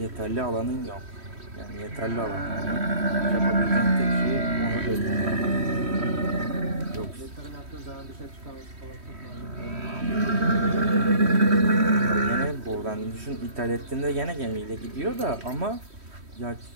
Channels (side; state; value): left; late; 3.1 ms